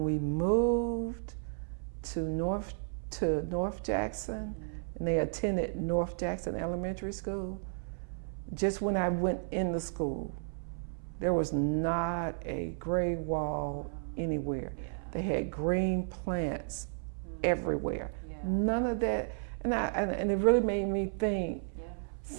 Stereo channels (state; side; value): silent; left; 56 dB below the other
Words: we moved to North Jackson, and they attended North Jackson Elementary School, just when I went in the school, there was not a gray wall anywhere. Yeah. They had green plants everywhere. Yeah. None of that, and it really made me think. Yeah.